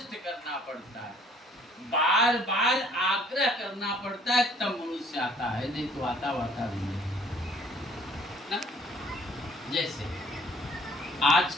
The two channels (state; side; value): normal; both; correlation 0.58